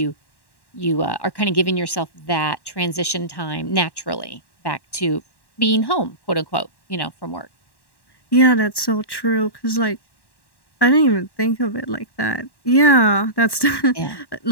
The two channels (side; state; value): right; late; 1.1 ms